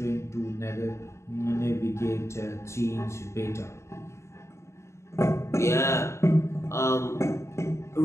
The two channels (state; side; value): late; right; 0.14 ms